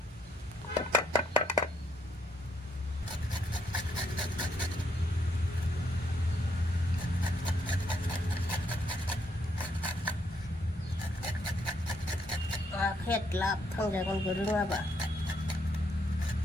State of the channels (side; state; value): both; normal; correlation 0.73